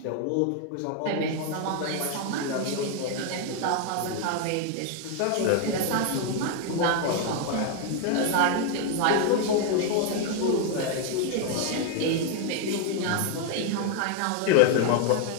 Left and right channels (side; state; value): both; different; correlation 0.00